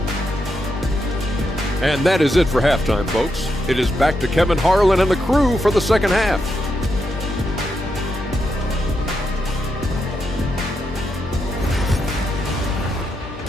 And that is it for halftime, folks. It is back to Kevin Harlan and the crew for the second half.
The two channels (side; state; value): left; noise; hum, 14 dB below the sound